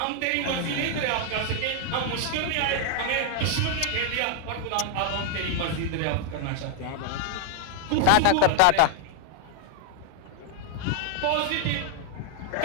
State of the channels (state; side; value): different; both; correlation 0.00